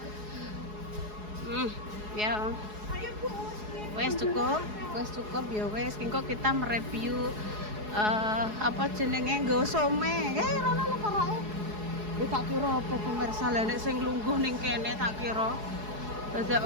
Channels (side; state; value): left; late; 4.7 ms